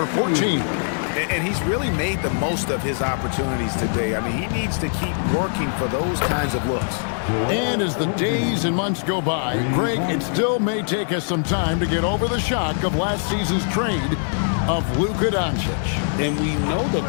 14. And he's really made the most of his opportunities today. I mean, he needs to keep working for those kinds of looks. And as the days and months go by, Greg, it still may take us some time to get over the shock of last season's trade of Luka Doncic. And we know the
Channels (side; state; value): right; silent; digital silence